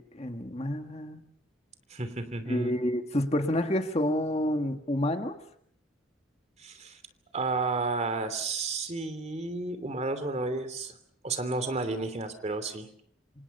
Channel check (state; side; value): normal; both; correlation 0.49